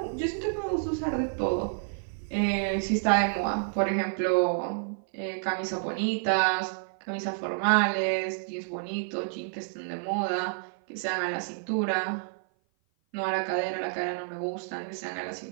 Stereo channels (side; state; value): left; silent; 55 dB below the other